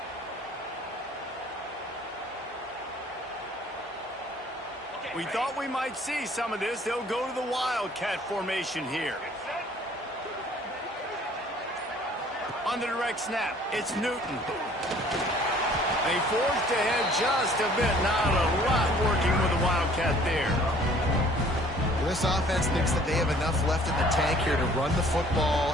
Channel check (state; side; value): normal; both; correlation 0.55